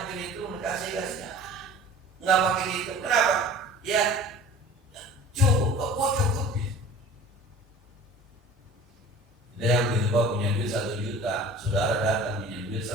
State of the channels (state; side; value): normal; both; correlation 0.43